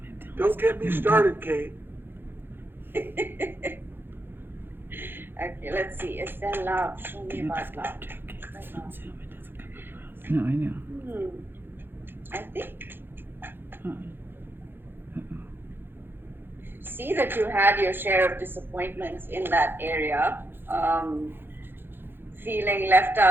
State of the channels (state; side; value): late; left; 0.10 ms